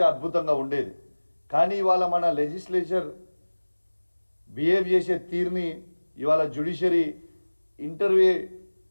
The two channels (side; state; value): both; inverted; correlation -1.00